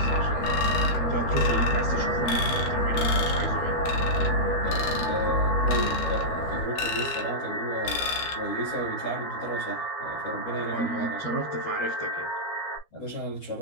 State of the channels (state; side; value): late; right; 13 ms